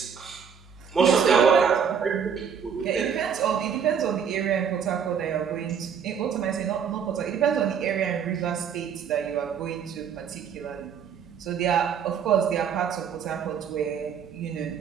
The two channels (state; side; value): quieter; left; 7.3 dB